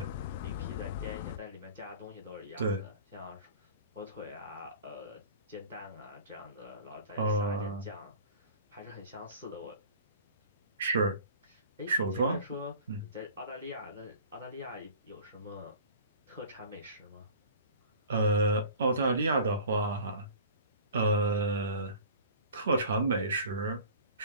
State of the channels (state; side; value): inverted; both; correlation -0.42